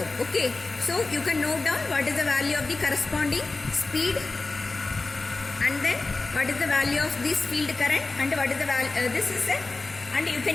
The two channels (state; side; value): quieter; right; 3.5 dB